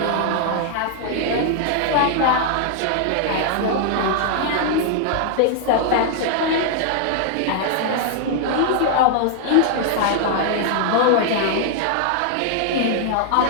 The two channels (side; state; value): both; different; correlation 0.00